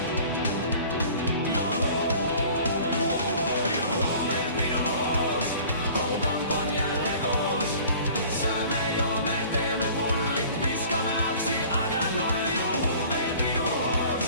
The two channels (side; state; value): both; inverted; correlation -0.47